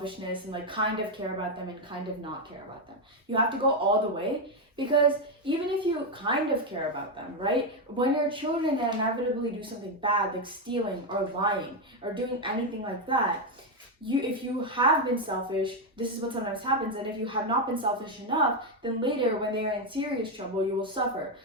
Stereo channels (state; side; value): normal; both; correlation 0.05